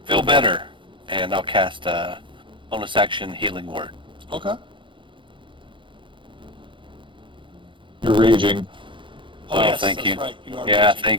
feel better. And I'll cast a bonus action healing word. Okay. You're raging. Oh, Oh, yes, thank that's you. right. You are Yeah, raging,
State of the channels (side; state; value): left; late; 0.24 ms